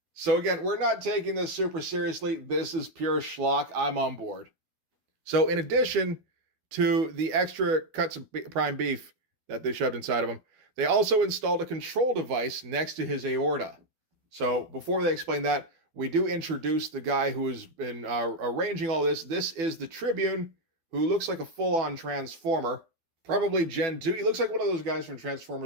So again, we're not taking this super seriously. This is pure schlock. I'm on board. So in addition to the extra cuts of prime beef that they shoved inside of him, they also installed a control device next to his aorta. So before they explain that, we do introduce the guy who has been arranging all this. This is the Tribune, who looks like a full-on Transformer. Probably Gen 2. He looks like one of those guys from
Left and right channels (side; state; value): left; late; 12 ms